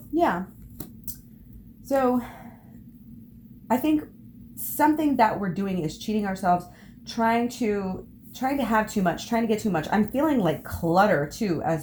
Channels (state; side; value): identical; both; correlation 1.00